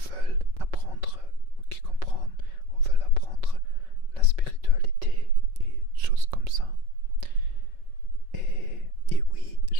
apprendre, qui comprennent ou veulent apprendre la spiritualité et choses comme ça. Et oui,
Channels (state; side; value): late; left; 5.3 ms